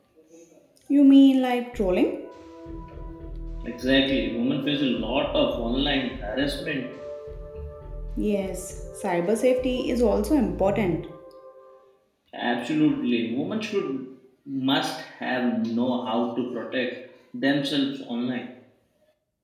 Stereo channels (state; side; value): identical; both; correlation 1.00